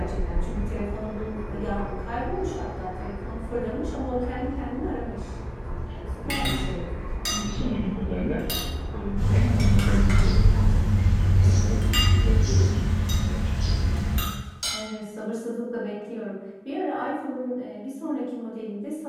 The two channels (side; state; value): both; identical; correlation 1.00